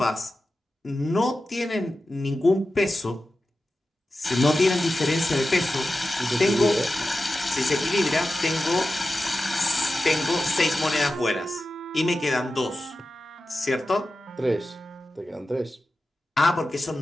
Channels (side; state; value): both; normal; correlation 0.93